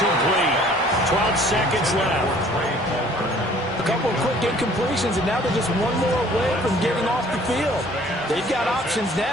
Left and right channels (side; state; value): both; normal; correlation 0.55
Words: 12 seconds left. A couple of quick incompletions, and now they're just one more away from getting off the field. They've got options